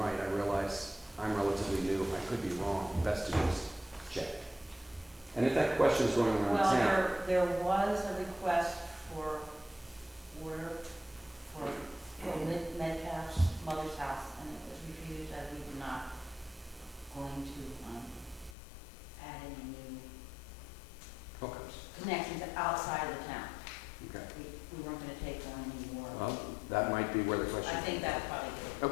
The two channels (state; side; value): drops out; right; at 18.6 s